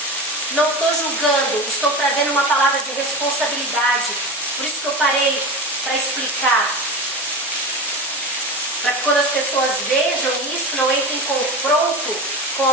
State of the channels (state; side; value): normal; both; correlation 0.27